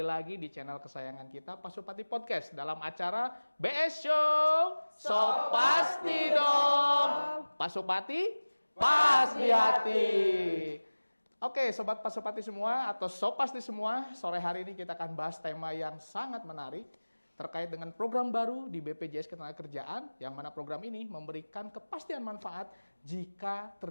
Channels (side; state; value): both; inverted; correlation -1.00